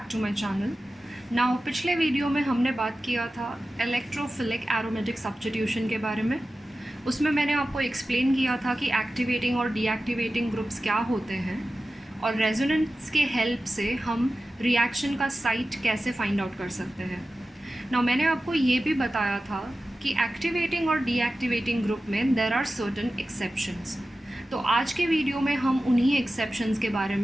to my channel. Now पिछले वीडियो में हमने बात किया था इलेक्ट्रोफिलिक एरोमेटिक सब्स्टिट्यूशन के बारे में। उसमें मैंने आपको एक्सप्लेन किया था कि एक्टिवेटिंग और डीएक्टिवेटिंग ग्रुप्स क्या होते हैं और रेजोनेंस के हेल्प से हम रिएक्शन का साइट कैसे फाइंड आउट कर सकते हैं। नाउ मैंने आपको ये भी बताया था कि एक्टिवेटिंग और डीएक्टिवेटिंग ग्रुप में देयर आर सर्टेन एक्सेप्शंस। तो आज के वीडियो में हम उन्हीं एक्सेप्शंस के बारे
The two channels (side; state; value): both; normal; correlation 0.94